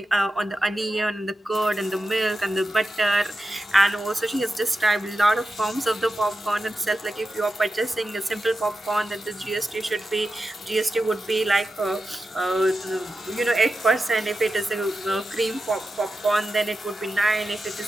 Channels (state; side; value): normal; both; correlation 0.91